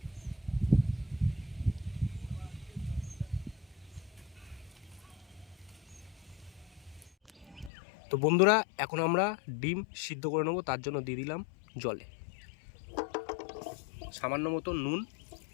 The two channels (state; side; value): drops out; right; at 7.7 s